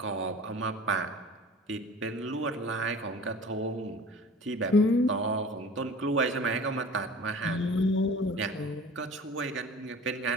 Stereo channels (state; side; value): normal; both; correlation 0.43